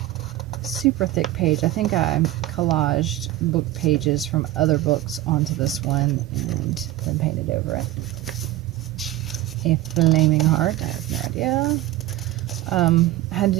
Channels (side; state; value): left; quieter; 15.5 dB